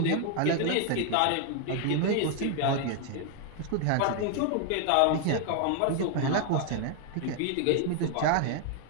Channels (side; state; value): both; different; correlation 0.00